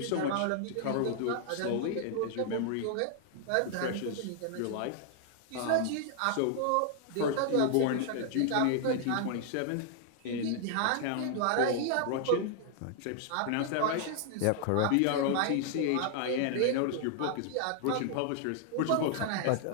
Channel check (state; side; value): different; both; correlation -0.01